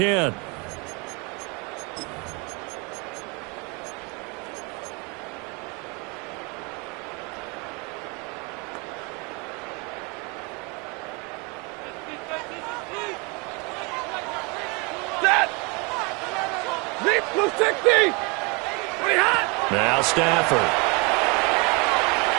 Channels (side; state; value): left; quieter; 30.1 dB